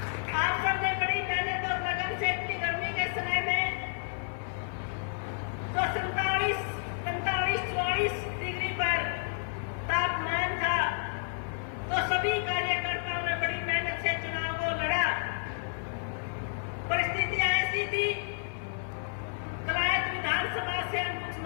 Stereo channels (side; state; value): right; silent; 56 dB below the other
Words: आप सबने बड़ी मेहनत और लगन से इतनी गर्मी के समय में जो 47-44 डिग्री पर तापमान था, तो सभी कार्यकर्ताओं ने बड़ी मेहनत से चुनाव को लड़ा। परिस्थितियां ऐसी थी, कलायत विधानसभा से हम कुछ